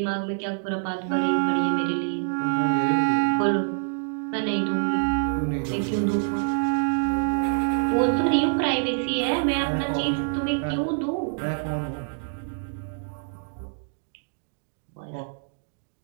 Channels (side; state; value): left; silent; digital silence